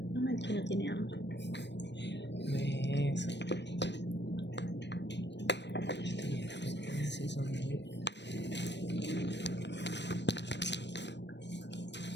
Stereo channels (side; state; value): right; late; 0.51 ms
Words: No, el que no tiene hambre. Eso. Sí, son muy...